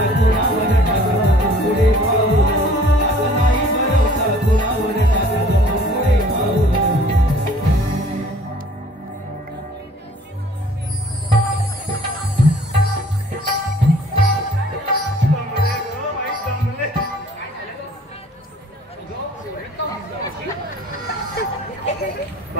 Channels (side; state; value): both; normal; correlation 0.53